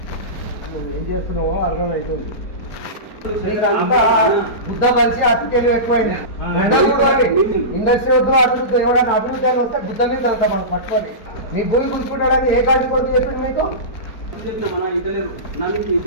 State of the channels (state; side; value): late; right; 4.4 ms